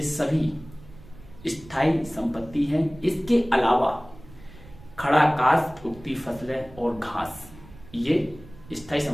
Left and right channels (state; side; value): noise; right; rumble, 20 dB below the sound